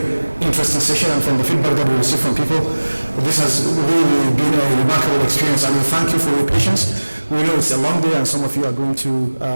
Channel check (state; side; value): inverted; both; correlation -1.00